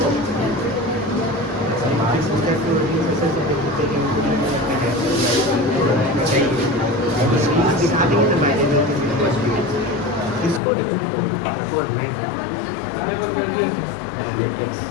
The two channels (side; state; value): right; drops out; at 10.6 s